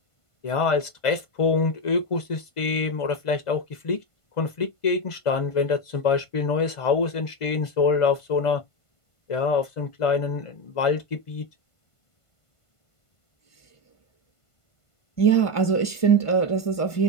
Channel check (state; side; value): late; right; 1.5 ms